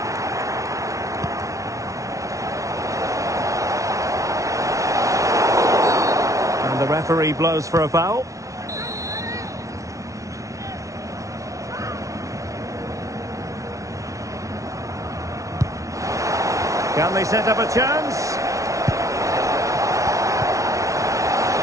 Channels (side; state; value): left; late; 0.16 ms